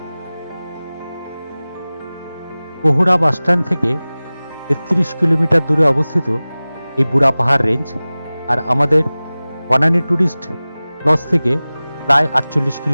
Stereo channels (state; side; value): inverted; both; correlation -0.98